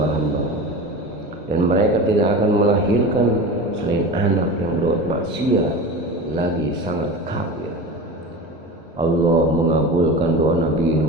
dan mereka tidak akan melahirkan selain anak yang berbuat maksiat lagi sangat kafir." Allah mengabulkan doa Nabi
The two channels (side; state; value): both; normal; correlation 0.30